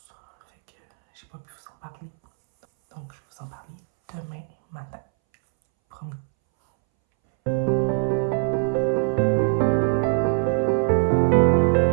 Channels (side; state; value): left; silent; 64 dB below the other